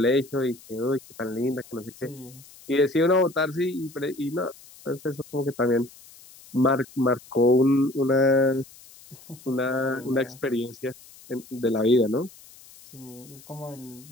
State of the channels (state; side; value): noise; left; hiss, 22 dB below the sound